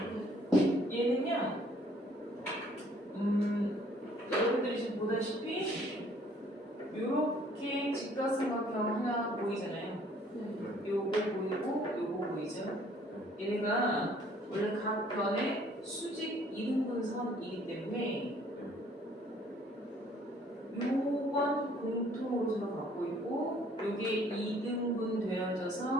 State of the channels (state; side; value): normal; both; correlation 0.60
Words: 얘는요 여러분들이 지금 보다시피 이렇게 직각삼각형 얘네가 보이잖아요. 요거 보이고 요거 보이죠? 얘네가 원래 각 변의 수직 이등분선이기 때문에 요건 공통으로 서로 갖고 있고 요게 2등분